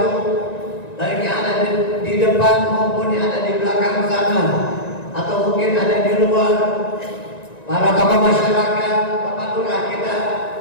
baik yang ada di depan maupun yang ada di belakang sana atau mungkin ada di luar, para tokoh masyarakat, bapak lurah kita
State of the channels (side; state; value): right; late; 1.9 ms